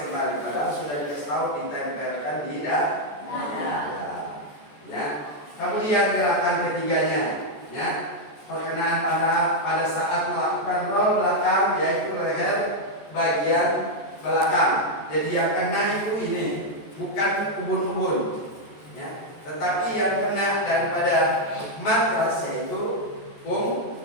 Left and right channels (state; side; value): late; right; 14 ms